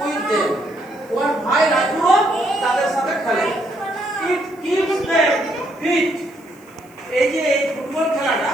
with them. ওর ভাই রাজু তাদের সাথে খেলে। It keeps them fit. এই যে এই ফুটবল খেলাটা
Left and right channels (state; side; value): noise; right; hiss, 30 dB below the sound